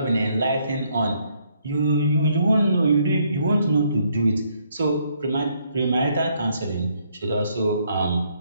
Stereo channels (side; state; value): both; inverted; correlation -0.71